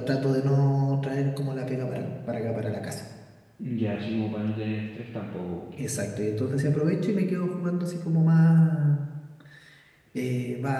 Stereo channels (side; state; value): both; identical; correlation 1.00